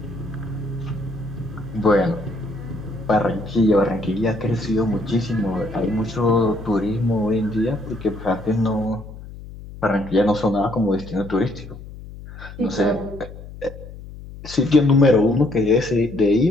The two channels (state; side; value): noise; left; hum, 14 dB below the sound